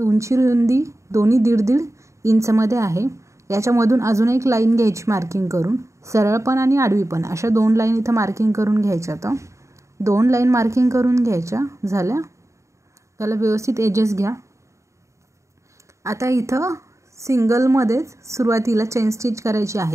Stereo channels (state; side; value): late; left; 0.14 ms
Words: रुंदी दोन्ही 1.5 इंचमध्ये आहे। याच्यामधून अजून एक लाईन घ्यायची मार्किंग करून, सरळ पण आणि आडवी पण अशा दोन लाईन इथं मार्किंग करून घ्यायच्या। तर दोन लाईन मार्किंग करून घ्यायच्या झाल्या, त्याला व्यवस्थित एजेस घ्या। आता इथं सिंगलमध्येच सुरुवातीला चेन स्टिच करायची